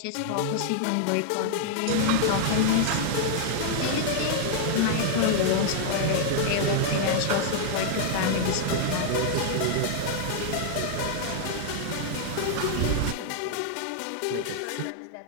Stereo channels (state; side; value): different; both; correlation -0.01